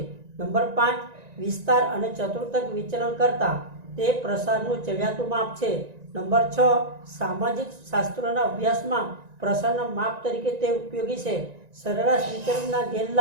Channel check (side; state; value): left; late; 1.9 ms